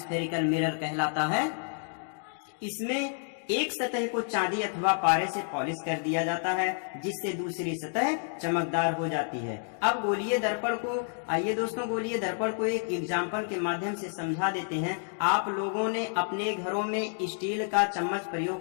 मिरर कहलाता है। इसमें एक सतह को चांदी अथवा पारे से पॉलिश कर दिया जाता है जिससे दूसरी सतह चमकदार हो जाती है। अब गोलीय दर्पण को, आइए दोस्तों, गोलीय दर्पण को एक एग्जाम्पल के माध्यम से समझा देते हैं। आप लोगों ने अपने घरों में स्टील का चम्मच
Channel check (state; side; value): silent; right; 58 dB below the other